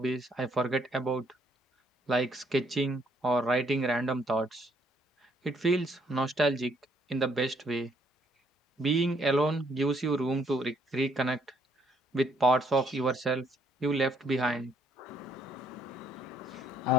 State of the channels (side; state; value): both; normal; correlation 0.68